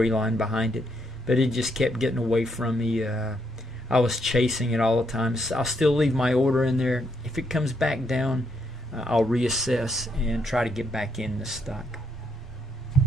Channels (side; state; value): both; normal; correlation 0.75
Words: behind it, but it just kept getting away from me. I was chasing it all the time. So I'll still leave my order in there. If it comes back down, I'll reassess and try to get back in the stock.